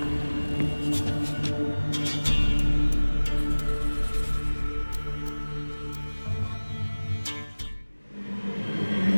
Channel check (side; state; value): both; inverted; correlation -1.00